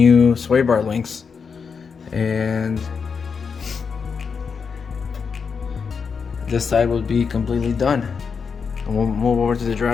Swaybar links, and this side will be completely done. And we'll move over to the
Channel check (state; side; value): quieter; right; 5.8 dB